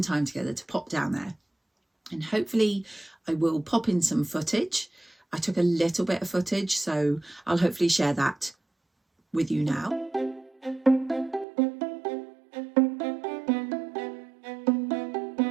time together to pop down there. And hopefully I will pop in some footage. I took a little bit of footage, so I'll hopefully share that with you now.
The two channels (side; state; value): left; drops out; at 11.5 s